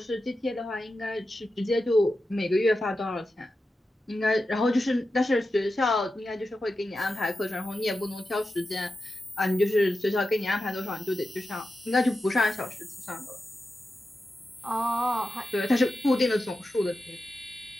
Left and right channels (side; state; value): both; normal; correlation 0.91